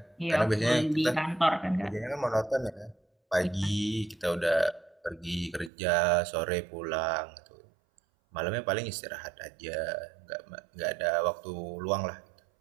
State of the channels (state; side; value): drops out; left; at 5.7 s